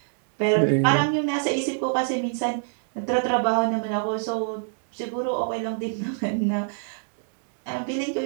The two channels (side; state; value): left; silent; digital silence